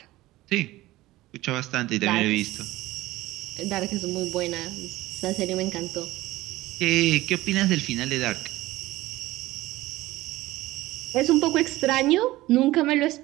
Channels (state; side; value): quieter; left; 17.6 dB